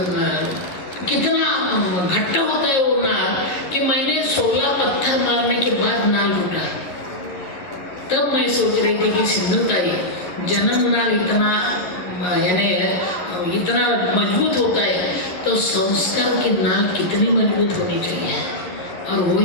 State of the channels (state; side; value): late; right; 11 ms